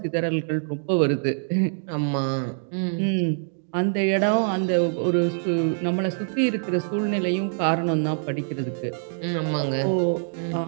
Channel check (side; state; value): left; silent; digital silence